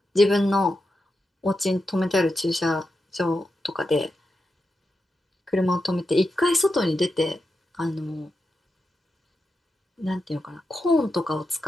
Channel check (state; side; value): normal; both; correlation 0.88